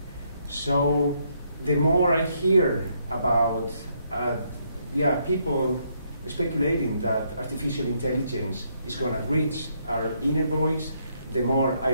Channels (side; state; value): both; inverted; correlation -0.74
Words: So the more I hear about people speculating that artificial intelligence is going to reach our inner voice, the more